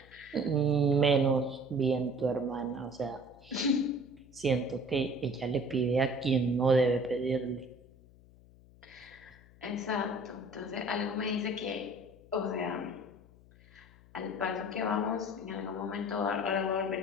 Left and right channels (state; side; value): noise; left; hum, 24 dB below the sound